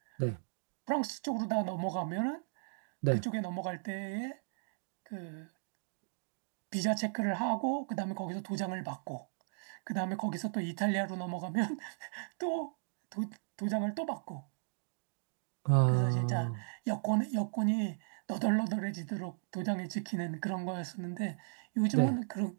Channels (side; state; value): left; silent; digital silence